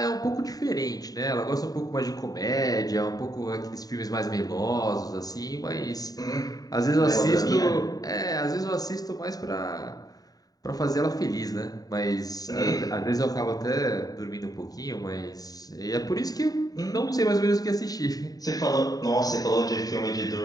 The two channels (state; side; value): late; right; 0.18 ms